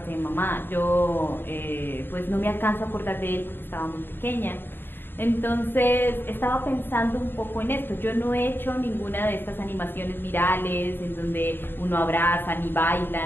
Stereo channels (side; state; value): right; late; 0.099 ms